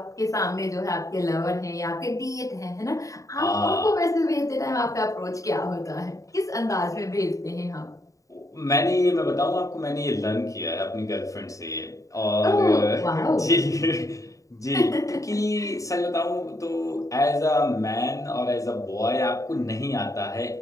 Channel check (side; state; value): right; late; 0.16 ms